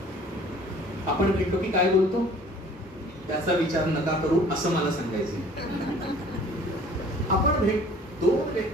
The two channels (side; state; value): both; normal; correlation 0.51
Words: आपण भेटलो की काय बोलतो त्याचा विचार नका करू असं मला सांगायचं. आपण 2